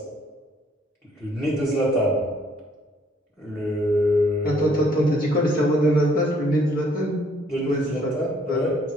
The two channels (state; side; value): normal; both; correlation 0.64